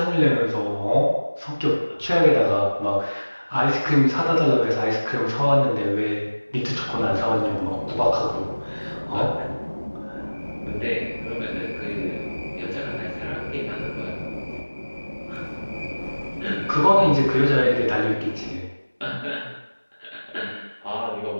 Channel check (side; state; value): both; inverted; correlation -1.00